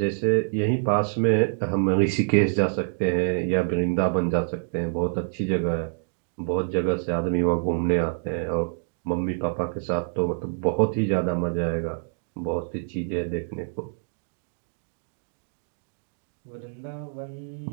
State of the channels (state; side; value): silent; left; digital silence